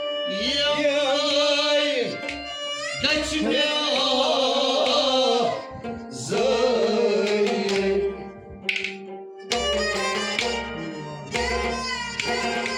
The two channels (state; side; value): identical; both; correlation 1.00